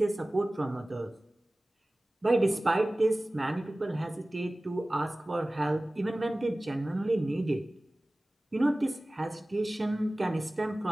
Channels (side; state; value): both; normal; correlation 0.98